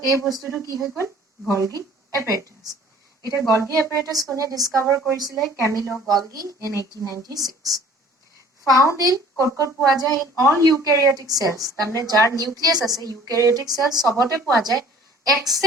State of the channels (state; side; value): normal; both; correlation 0.51